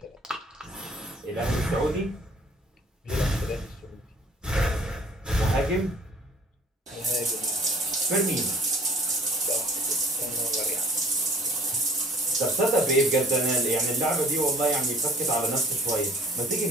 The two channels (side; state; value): both; normal; correlation 0.54